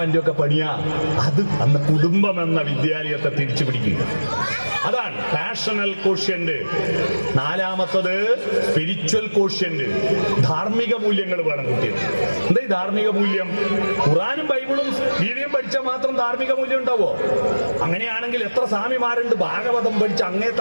ഒക്കെ പണിയാ. അത് അന്ന് കുടുംബം എന്ന വിദ്യാലയത്തെ തിരിച്ചു പിടിക്കുക. അതാണ് പാഷണൽ കോഷ്യന്റ്. നാലാമത്തത് സ്പിരിച്വൽ കോഷ്യന്റ്. ധാർമ്മിക മൂല്യങ്ങൾ വേണം കുട്ടികൾ. എന്താ ഈ ധാർമ്മിക മൂല്യം? ഖുറാനും ബൈബിളും ഗീതയും പഠിച്ചാൽ മാത്രം ധാർമ്മിക മൂല്യം ഉണ്ടാവോ? അങ്ങനെയാണെങ്കിൽ എത്ര സ്വാമിമാരുണ്ട് ഭാഗവതം പഠിച്ച് അങ്ങേ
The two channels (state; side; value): inverted; both; correlation -1.00